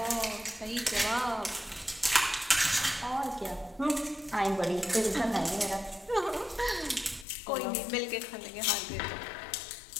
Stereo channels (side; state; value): right; drops out; at 7.2 s